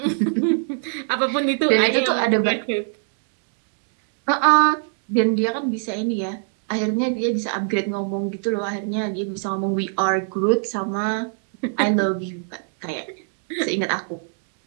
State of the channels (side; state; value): left; silent; digital silence